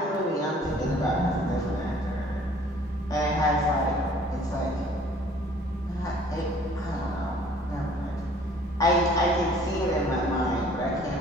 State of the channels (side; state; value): both; normal; correlation 0.54